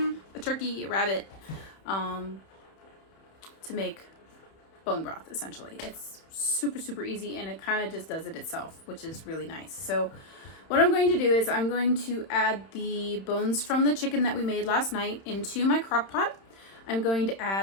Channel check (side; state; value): right; late; 31 ms